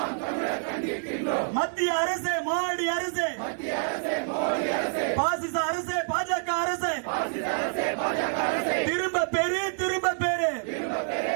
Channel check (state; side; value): silent; left; digital silence